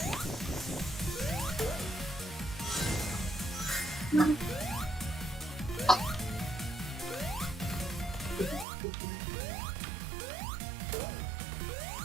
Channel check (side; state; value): left; drops out; at 8.7 s